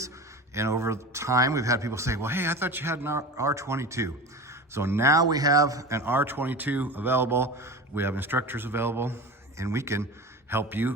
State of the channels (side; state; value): both; normal; correlation 0.31